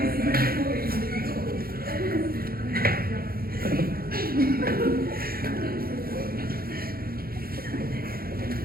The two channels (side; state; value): left; late; 0.44 ms